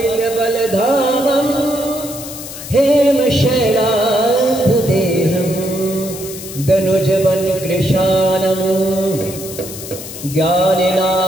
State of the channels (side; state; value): left; noise; hiss, 11 dB below the sound